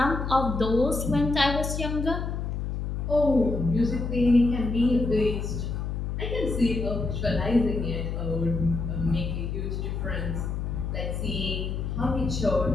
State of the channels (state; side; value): noise; left; hum, 3 dB below the sound